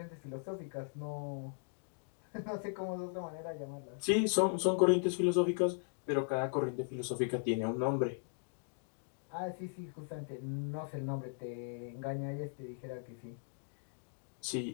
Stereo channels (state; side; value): silent; right; digital silence